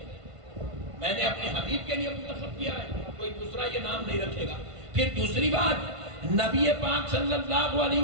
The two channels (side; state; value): left; late; 1.5 ms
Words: میں نے اپنے حبیب کے لیے منتخب کیا ہے، کوئی دوسرا یہ نام نہیں رکھے گا۔ پھر دوسری بات، نبی پاک صلی اللہ علیہ